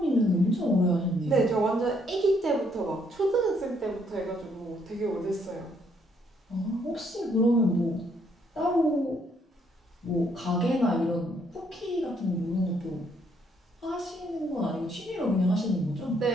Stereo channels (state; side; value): normal; both; correlation 0.70